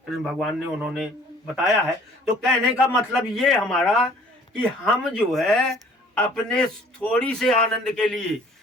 फिर भगवान ने उन्होंने बताया है। तो कहने का मतलब ये हमारा कि हम जो है अपने थोड़ी से आनंद के लिए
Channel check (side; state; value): both; normal; correlation 0.54